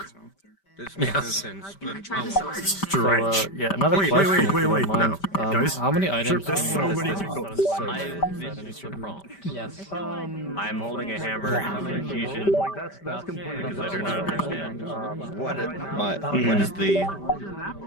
This makes no sense. But So, yeah, another Wait, question. wait, if wait, you don't wait, mind. no. Guys, how many items? there's so many people. Yes. I'm holding a hammer. Confusion. That's completely. Because I do not understand.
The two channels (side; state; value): right; late; 5.1 ms